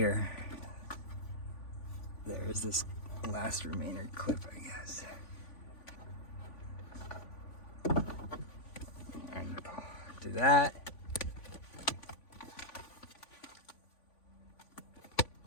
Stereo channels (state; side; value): late; right; 3.5 ms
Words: there is this last remainder clip, I guess. And do that.